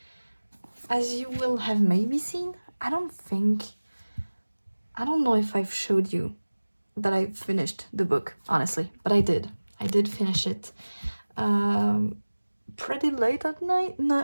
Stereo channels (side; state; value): both; inverted; correlation -1.00